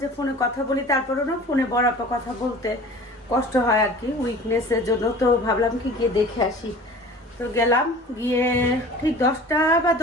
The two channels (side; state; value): both; normal; correlation 0.43